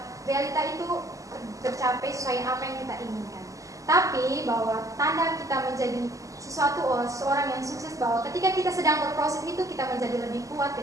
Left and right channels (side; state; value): left; late; 0.16 ms